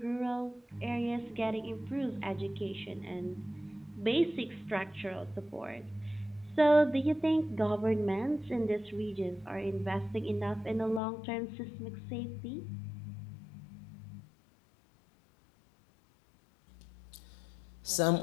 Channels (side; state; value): right; drops out; at 11.0 s